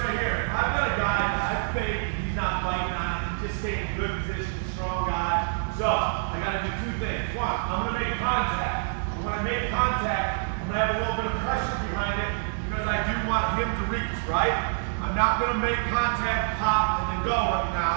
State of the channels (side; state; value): left; silent; digital silence